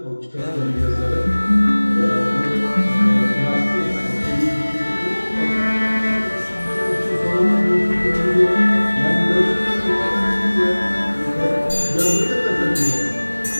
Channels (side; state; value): both; inverted; correlation -1.00